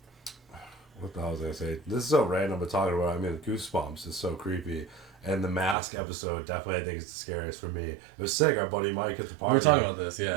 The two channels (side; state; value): left; drops out; at 5.8 s